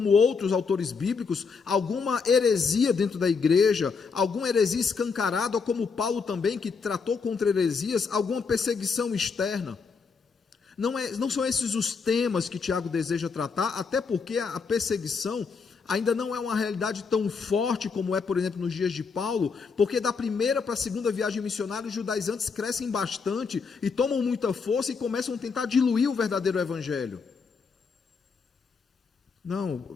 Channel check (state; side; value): quieter; right; 5.2 dB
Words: outros autores bíblicos, alguma heresia dentro da igreja, alguma heresia escancarada, ou como Paulo também, que tratou contra heresias, alguma perseguição externa. Não são esses os temas que Tiago deseja tratar, até porque a perseguição ainda não é uma realidade tão forte como é, por exemplo, nos dias de Paulo, porque da primeira para a segunda viagem missionária, os judaizantes crescem bastante e tomam muita força e começam a tentar diluir o verdadeiro evangelho. Não,